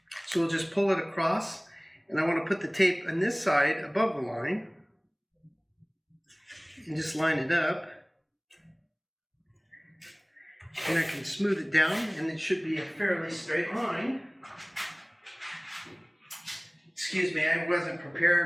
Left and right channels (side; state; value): both; identical; correlation 1.00